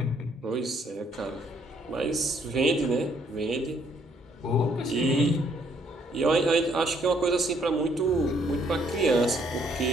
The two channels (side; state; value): both; normal; correlation 0.67